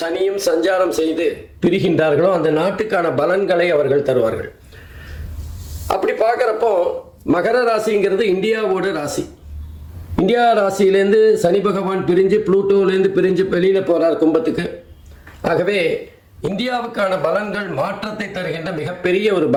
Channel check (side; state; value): both; identical; correlation 1.00